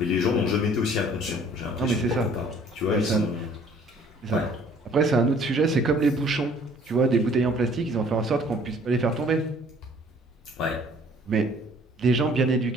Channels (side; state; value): both; normal; correlation 0.56